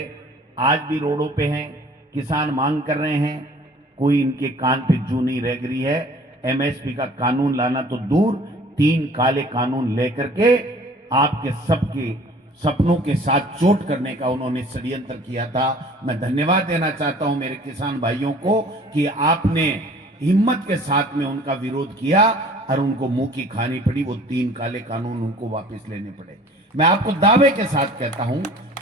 आज भी रोडों पे हैं, किसान मांग कर रहे हैं, कोई इनके कान पे जू नहीं रह गई है। एमएसपी का कानून लाना तो दूर, 3 काले कानून लेकर के आपके सबके सपनों के साथ चोट करने का उन्होंने षड्यंत्र किया था। मैं धन्यवाद देना चाहता हूं मेरे किसान भाइयों को कि आपने हिम्मत के साथ में उनका विरोध किया और उनको मुंह की खानी पड़ी, वो 3 काले कानून उनको वापस लेने पड़े। मैं आपको दावे के साथ कहता हूं,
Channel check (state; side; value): normal; both; correlation 0.50